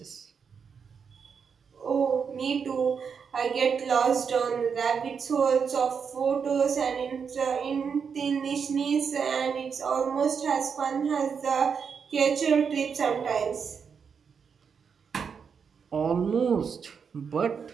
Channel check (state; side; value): quieter; left; 6.4 dB